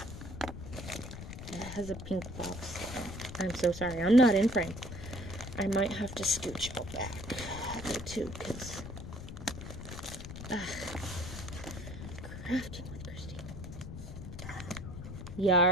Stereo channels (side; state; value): left; noise; rumble, 10 dB below the sound